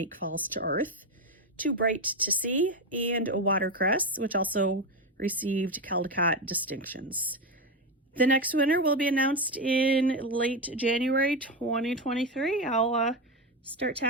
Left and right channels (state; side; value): normal; both; correlation 0.12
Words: Falls to Earth, Too Bright to See, and Watercress, which also received Caldecott distinctions. The next winner will be announced in late January 2023. I'll start